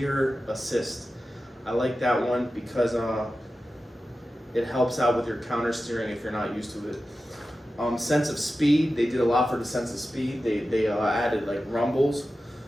assist. I like that one because it helps out with your counter steering if you're not used to it. Sense of speed, they did a lot for the sense of speed. They added like rumbles,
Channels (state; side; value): normal; both; correlation 0.93